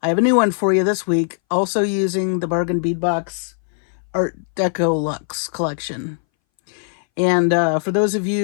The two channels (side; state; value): right; silent; 62 dB below the other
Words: I have a new one for you this week, also using the bargain bead box Art Deco Luxe collection. And for those of